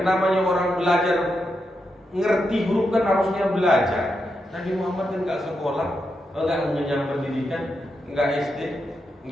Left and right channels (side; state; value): both; normal; correlation 0.85